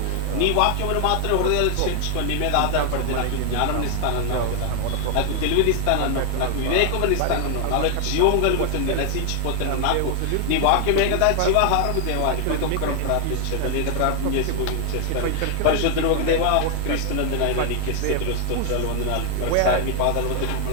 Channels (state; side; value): different; both; correlation 0.00